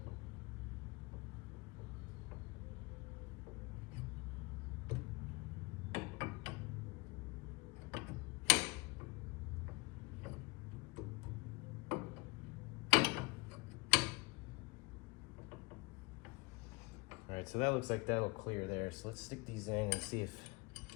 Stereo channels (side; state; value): right; quieter; 25.3 dB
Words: All right, so that looks like that'll clear there. So let's stick these in and see if